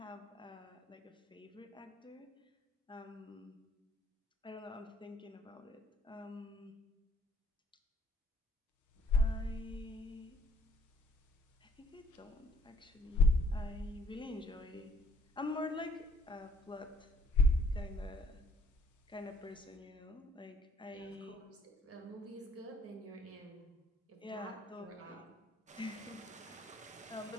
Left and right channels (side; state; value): both; normal; correlation 0.63